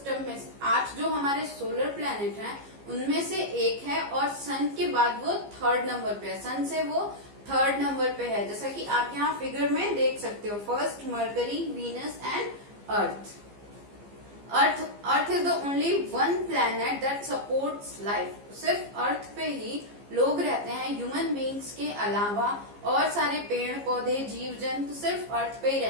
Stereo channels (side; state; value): left; late; 15 ms